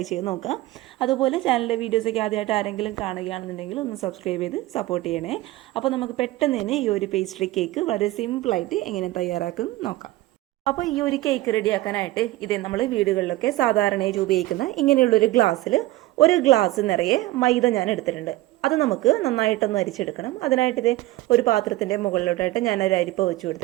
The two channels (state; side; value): quieter; left; 17.4 dB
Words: ചെയ്ത് നോക്കുക. അതുപോലെ ചാനലിലെ വീഡിയോസൊക്കെ ആദ്യമായിട്ട് ആരെങ്കിലും കാണുകയാണെന്നുണ്ടെങ്കിൽ ഒന്ന് സബ്സ്ക്രൈബ് ചെയ്ത് സപ്പോർട്ട് ചെയ്യണേ. അപ്പോൾ നമുക്ക് പെട്ടെന്ന് തന്നെ ഈ ഒരു പേസ്ട്രി കേക്ക് വളരെ സിമ്പിളായിട്ട് എങ്ങനെ തയ്യാറാക്കും നോക്കാം. അപ്പോൾ ഈ ഒരു കേക്ക് റെഡിയാക്കാനായിട്ട് ഇതേ നമ്മൾ വീടുകളിലൊക്കെ സാധാരണയായി ഉപയോഗിക്കുന്ന ഇങ്ങനെയുള്ളൊരു ഗ്ലാസ്സിൽ ഒരു ഗ്ലാസ് നിറയെ മൈദ ഞാൻ എടുത്തിട്ടുണ്ട്. അത് നമുക്ക് നന്നായിട്ടൊന്ന് അരിച്ചെടുക്കണം. അതിനായിട്ട് ഇതേ ഒരു പാത്രത്തിൻ്റെ മുകളിലോട്ടായിട്ട് ഞാൻ ഒരു അരിപ്പ വെച്ച്